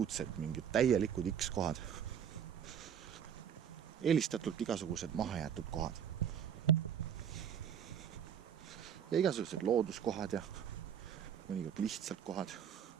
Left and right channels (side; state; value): left; quieter; 8.5 dB